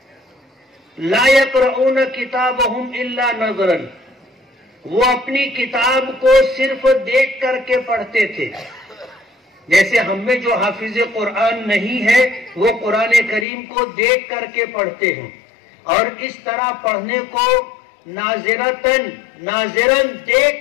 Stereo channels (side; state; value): right; drops out; at 13.5 s